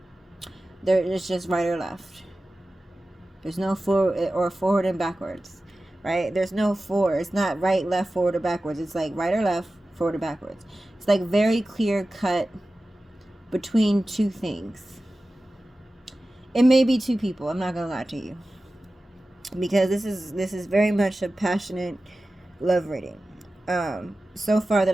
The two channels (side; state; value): both; normal; correlation 0.95